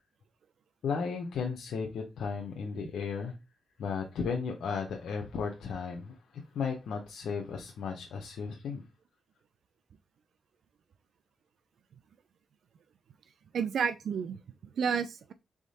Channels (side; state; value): both; normal; correlation 0.70